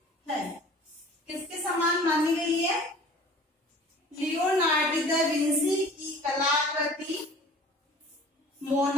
है। किसके समान मानी गई है, लियोनार्डो दा विंसी की कलाकृति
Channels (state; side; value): normal; both; correlation 0.46